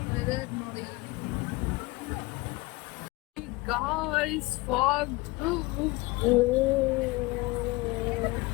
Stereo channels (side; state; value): right; quieter; 22.3 dB